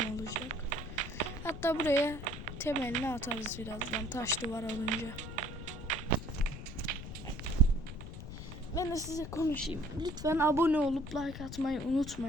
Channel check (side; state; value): left; noise; rumble, 10 dB below the sound